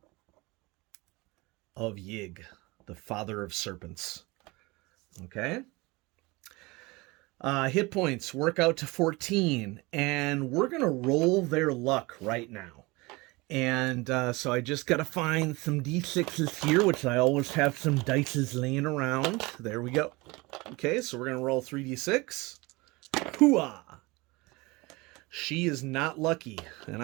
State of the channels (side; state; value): left; quieter; 23.9 dB